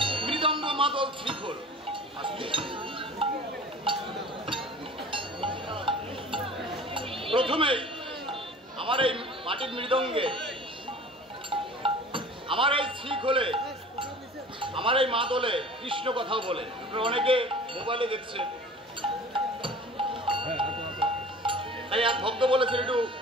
মৃদঙ্গ, মাদল, শ্রীখোল। প্রথমেই আমার এই মাটির মৃদঙ্গে, আমার এই শ্রীখোলে, আমার এই মাদলে কৃষ্ণ কথাও বলে। অনেকে মোবাইলে দেখছেন, তাই এক ভক্ত বলেছেন একটু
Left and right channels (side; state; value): both; normal; correlation 0.43